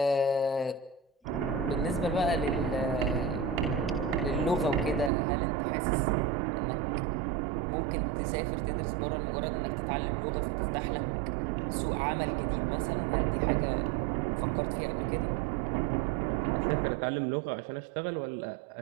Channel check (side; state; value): left; drops out; at 5.1 s